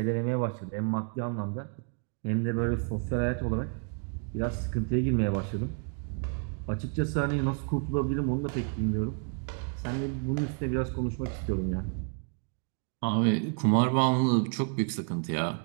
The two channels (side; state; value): left; quieter; 38.6 dB